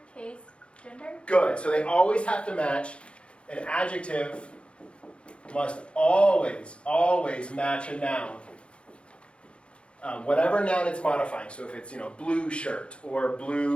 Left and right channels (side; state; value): right; late; 0.058 ms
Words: case, gender? Good. So they always have to match. An adjective must always match a noun. Whatever noun it's modifying. So if it's, blue shirt or